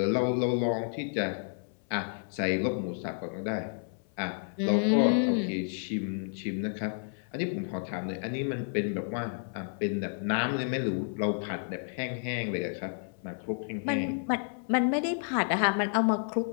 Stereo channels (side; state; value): right; silent; 57 dB below the other